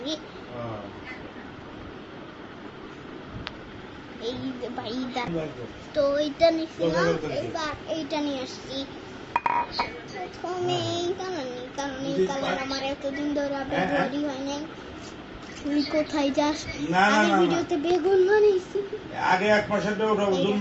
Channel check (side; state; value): both; identical; correlation 1.00